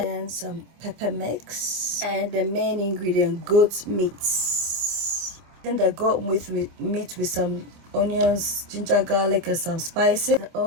some pepper mix, and the main ingredient, goat meat. Then the goat meat with some onions, ginger, garlic, and some spices. The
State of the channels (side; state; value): left; late; 25 ms